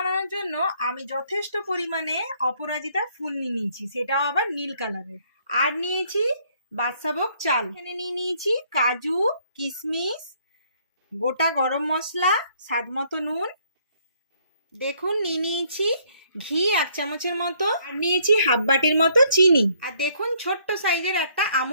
জন্য আমি যথেষ্ট পরিমাণে অপরাজিতা ফুল নিয়ে নিয়েছি, সেটাও আবার নীল কালারের। আর নিয়েছি বাদশাভোগ চাল। এখানে নিয়ে নিয়েছি কাজু, কিশমিশ, গোটা গরম মশলা, স্বাদ মতো নুন। দেখুন নিয়ে নিয়েছি ঘি 1 চামচের মতো, আর নিয়েছি হাফ বাটির মতো চিনি। আর দেখুন ছোট্ট সাইজের একটা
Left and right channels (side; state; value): both; inverted; correlation -0.65